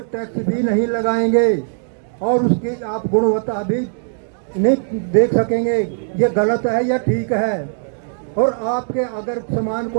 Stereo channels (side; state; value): left; silent; 66 dB below the other